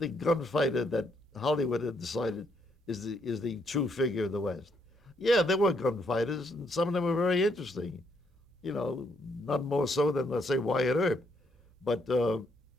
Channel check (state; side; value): normal; both; correlation 0.73